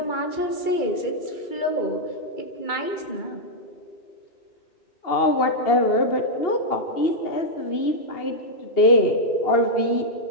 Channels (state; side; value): late; right; 2.8 ms